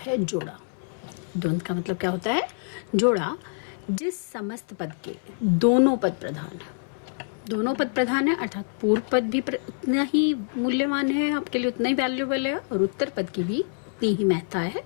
जोड़ा। द्वंद्व का मतलब क्या होता है? जोड़ा। जिस समस्त पद के दोनों पद प्रधान है, दोनों पद प्रधान है अर्थात पूर्व पद भी उतना ही मूल्यवान है, आपके लिए उतना ही वैल्यूएबल है, और उत्तर पद की भी उतनी ही महत्ता है,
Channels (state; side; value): silent; right; 61 dB below the other